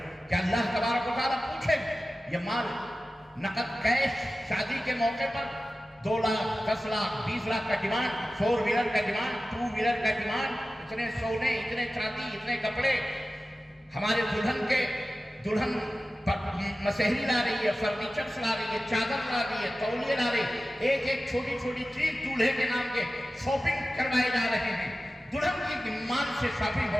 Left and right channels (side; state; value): both; normal; correlation 0.95